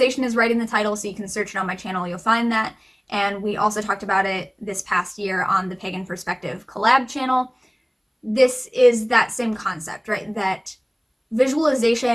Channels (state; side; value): identical; both; correlation 1.00